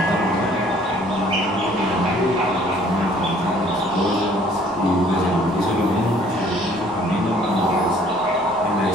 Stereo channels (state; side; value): noise; left; rumble, 25 dB below the sound